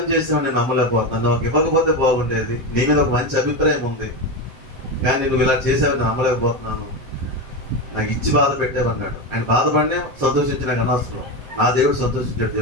చేసావు నేను నమ్మలేకపోతున్నాను, నాకు ఇవ్వకపోతే బాగుండేది, నీ మీద ఒక మంచి అభిప్రాయం ఉంది, కానీ నువ్వు ఇలా చేసావు నేను నమ్మలేకపోతున్నాను, నాకు ఇచ్చి బాధ పెట్టావన్నాడు. ఆయన బాధపడినే సంతోషించిన అనవసరం. నా దేవుడు సంతోషించాడు.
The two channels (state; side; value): late; left; 8.3 ms